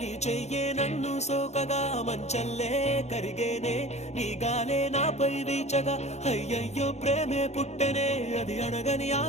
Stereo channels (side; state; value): right; late; 0.32 ms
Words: చెయ్యే నన్ను సోకగా మంచల్లే కరిగేనే నీ గాలే నాపై వీచగా అయ్యయ్యో ప్రేమే పుట్టెనే అది అడగని